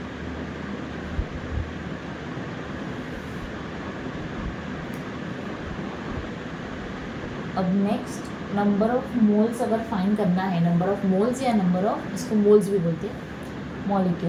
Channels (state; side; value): identical; both; correlation 1.00